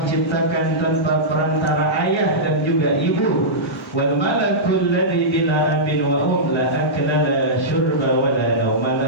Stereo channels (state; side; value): normal; both; correlation -0.14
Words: ciptakan tanpa perantara ayah dan juga ibu. Wal malakul ladzi bila abin wa la akla la syurba wa la nauma